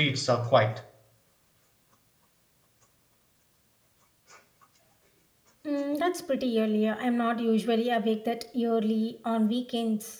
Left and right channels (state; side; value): identical; both; correlation 1.00